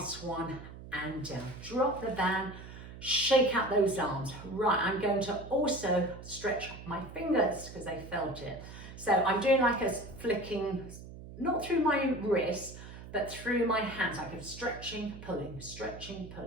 one and down. Drop the band, shake out those arms. Right, I'm going to also stretch my fingers because they felt it. So I'm doing like a flicking, not through my wrists, but through my hands, like I'm stretching, pulling, stretching,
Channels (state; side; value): noise; right; hum, 14 dB below the sound